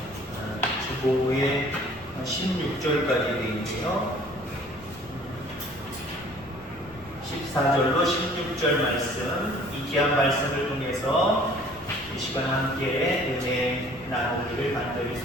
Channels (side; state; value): left; noise; rumble, 24 dB below the sound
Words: 주보에 16절까지 되어 있네요. 14절로 16절 말씀, 이 귀한 말씀을 통해서 이 시간 함께 은혜 나누기를 간절히